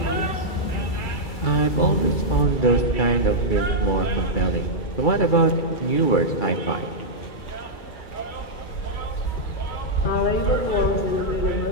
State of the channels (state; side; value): late; right; 2.3 ms